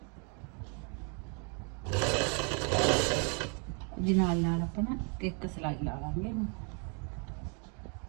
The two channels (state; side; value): quieter; left; 37.4 dB